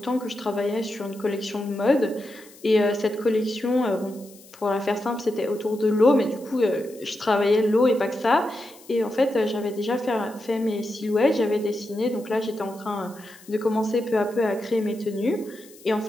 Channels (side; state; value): left; noise; hiss, 23 dB below the sound